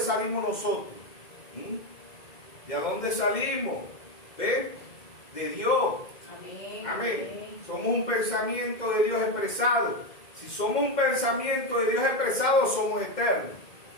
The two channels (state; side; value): late; right; 2.1 ms